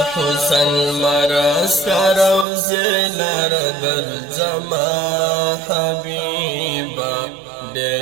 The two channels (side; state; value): left; drops out; at 2.5 s